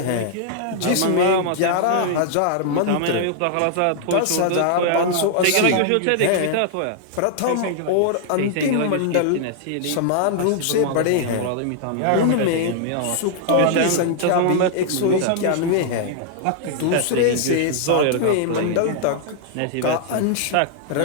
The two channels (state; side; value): different; both; correlation -0.01